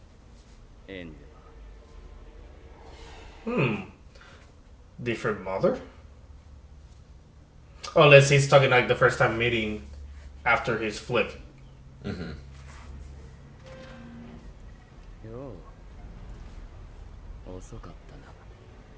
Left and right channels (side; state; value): both; identical; correlation 1.00